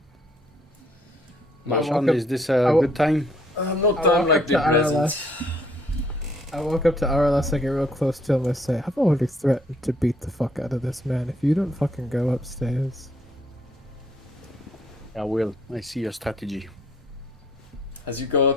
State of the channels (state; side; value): normal; both; correlation 0.66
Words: Marchand, is this a good time? No I time walk like up to the present. Aralas. I walk up to Aralas, I get real close to him, and I say, I've already threatened to beat the fuck out of this man if you don't fucking go upstairs. I will. I see your strategy. As you go